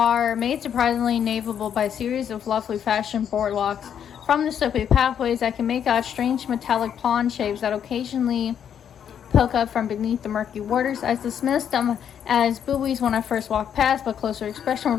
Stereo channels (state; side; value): quieter; right; 8.7 dB